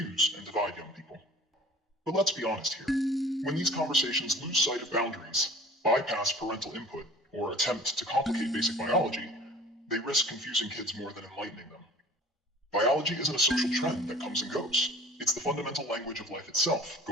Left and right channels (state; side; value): normal; both; correlation 0.46